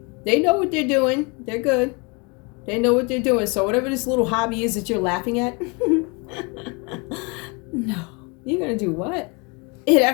they know what they're doing. They're good. They know what they're doing. So whatever this little hobby is that you're laughing at, no. You're going to do what? It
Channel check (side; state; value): right; quieter; 30.9 dB